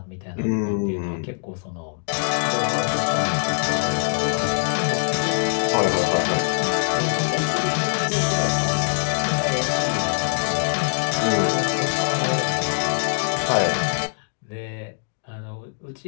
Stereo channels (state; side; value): silent; right; digital silence